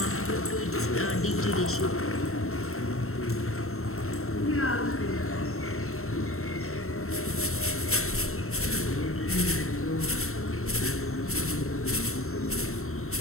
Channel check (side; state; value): right; late; 0.63 ms